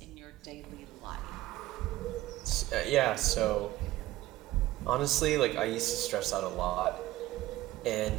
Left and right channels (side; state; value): left; quieter; 16.2 dB